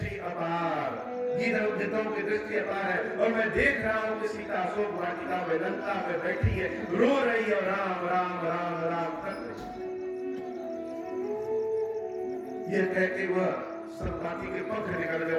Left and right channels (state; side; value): identical; both; correlation 1.00